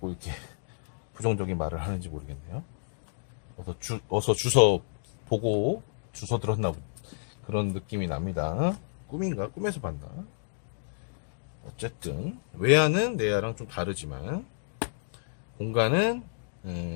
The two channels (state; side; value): silent; right; digital silence